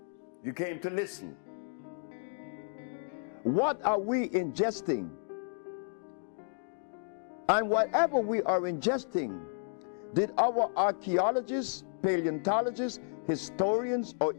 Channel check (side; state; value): right; silent; digital silence